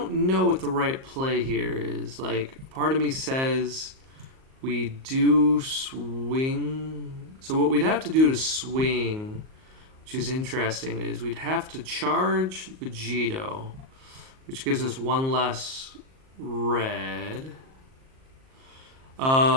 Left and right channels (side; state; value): left; late; 38 ms